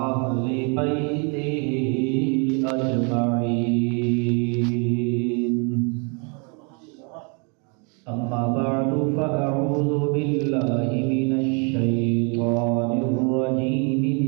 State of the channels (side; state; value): left; quieter; 35.6 dB